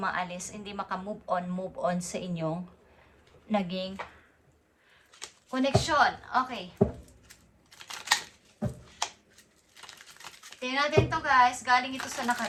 hindi maka-move on sa inyong naging connection. Okay. Tingnan natin to, guys. Galing ito sa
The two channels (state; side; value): identical; both; correlation 1.00